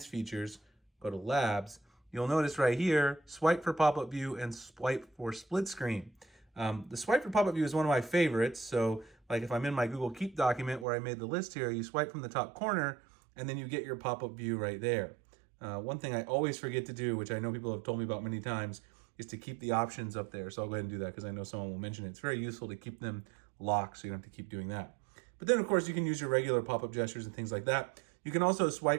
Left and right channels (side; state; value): left; drops out; at 10.9 s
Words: Features, go to Labs, you'll notice right here, swipe for pop-up view and swipe for split screen. The swipe for pop-up view is one of my favorites. So like if I'm in my Google Keep document where I made the list here, you swipe from the top corner and then you get your pop-up view right there. One thing I always forget to do, which I know people have told me about many times, is to keep the options up there. So I'll go ahead and do that because I know someone will mention it. It's very useful to keep them locked so you don't have to keep doing that. But then of course you can use your regular pop-up gestures and things like that. You can also